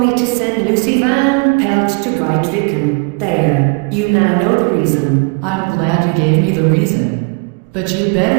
to send Lucy Van Pelt to Grytviken. There, you now know the reason. I'm glad you gave me the reason. But you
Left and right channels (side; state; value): left; quieter; 34.0 dB